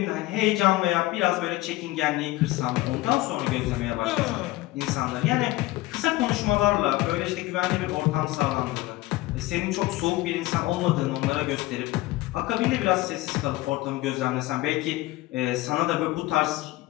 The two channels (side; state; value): right; quieter; 18.4 dB